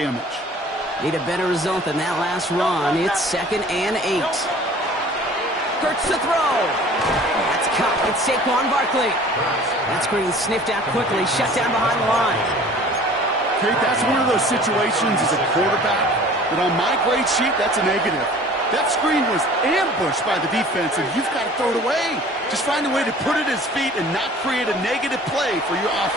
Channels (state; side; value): normal; both; correlation 0.47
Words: Need a better result than that last run. It's 2nd and 8. Hurts to throw. That's caught. It's Saquon Barkley. That screen sniffed out quickly, shut down behind the line. Kate, that's one of those situations as a quarterback that on my grade sheet, that's a negative. That screen was ambushed by the defense, and you've got to throw it away. Just find a way to put it at his feet and not create a negative play for your